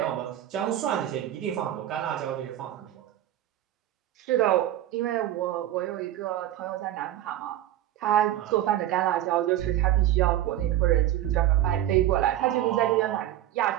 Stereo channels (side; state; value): left; quieter; 12.9 dB